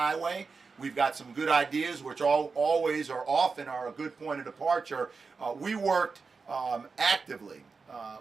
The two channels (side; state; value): left; quieter; 4.7 dB